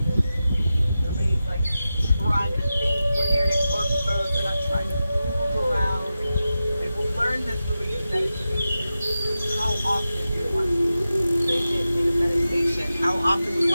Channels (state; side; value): inverted; both; correlation -0.92